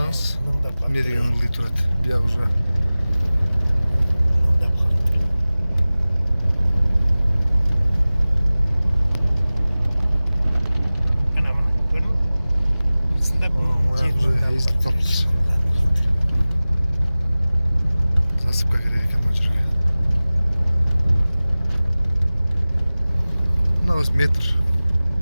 Эме деген ылдый турат. Бияк уже маяк уже эзилип калыптыр. Засыпка керек экен мына жерге. Мына метр.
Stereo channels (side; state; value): both; inverted; correlation -0.98